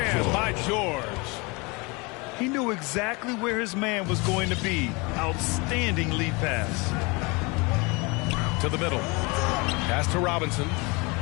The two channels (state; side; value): quieter; right; 27.4 dB